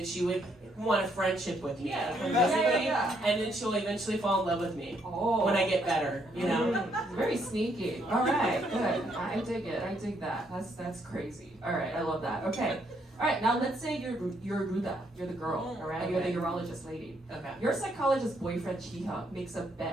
she would want a friendship with me, and then she'll eventually fall in love with me when I get better. You know, very sneaky. All right, good. I dig it. I dig that. That's crazy. All right, I love that. Okay. All right, now let's say you're Ruda, you're the girl, all right? Okay. You're the urologist lady. Okay. Your psychologist boyfriend Chi-hyuk makes a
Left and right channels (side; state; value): both; normal; correlation 0.72